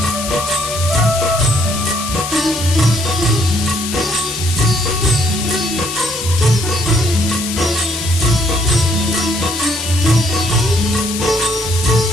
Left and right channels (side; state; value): left; noise; hiss, 6 dB below the sound